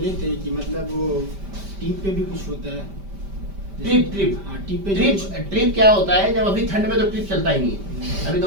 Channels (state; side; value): late; left; 5.1 ms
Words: थे कि मतलब वो टीम पे भी कुछ होता है, ट्रिप ट्रिप ट्रिप क्या होता है, जब अभी ठंड में तो ट्रिप चलता ही नहीं है, अभी